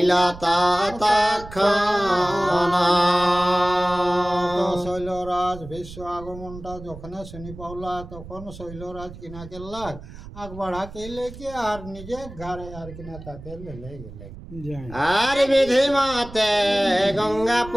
তৎক্ষণ। শৈলরাজ ভীষ্ম আগমনটা যখন শুনি পাওলা, তখন শৈলরাজ কিনা গেল আগ বাড়া কেলে কে আর নিজে ঘরে আর কিনা তাকে লেলে গেলে। আর বিধি মতে গঙ্গা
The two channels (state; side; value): noise; right; rumble, 15 dB below the sound